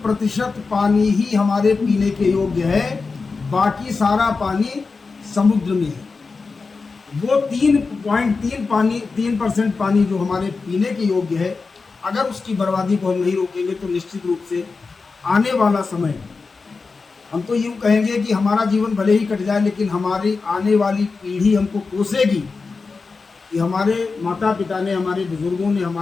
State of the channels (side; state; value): right; quieter; 4.4 dB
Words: पानी ही हमारे पीने के योग्य है, बाकी सारा पानी समुद्र में है। वो 3% पानी जो हमारे पीने के योग्य है, अगर उसकी बर्बादी को हम नहीं रोकेंगे तो निश्चित रूप से आने वाला समय, हम तो यूँ कहेंगे कि हमारा जीवन भले ही कट जाए, लेकिन हमारी आने वाली पीढ़ी हमको कोसेगी कि हमारे माता पिता ने, हमारे बुजुर्गों ने